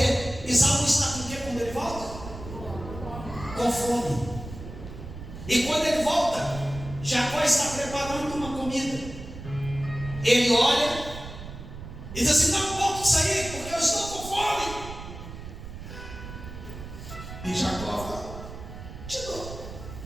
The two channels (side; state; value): right; noise; rumble, 11 dB below the sound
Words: Esaú está com o quê quando ele volta? Com fome. E quando ele volta, Jacó está preparando uma comida. Ele olha e diz assim: não posso sair porque eu estou com fome. E Jacó fala: te dou,